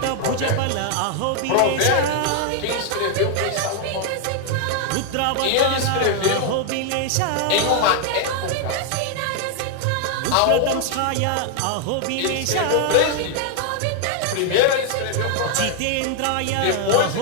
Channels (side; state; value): both; different; correlation 0.00